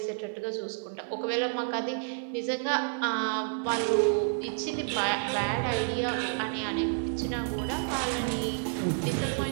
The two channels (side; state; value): left; silent; 58 dB below the other